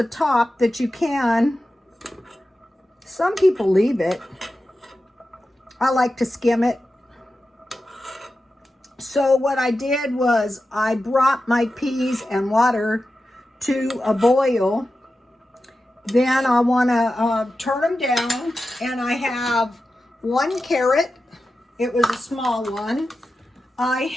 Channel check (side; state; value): both; normal; correlation 0.92